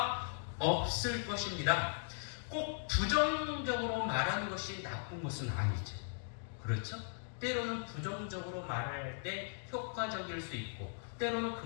없을 것입니다. 꼭 부정적으로 말하는 것이 나쁜 것은 아니죠. 그렇죠? 때로는 부정적으로 말할 때 효과적일 수 있고, 때로는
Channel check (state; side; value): silent; right; digital silence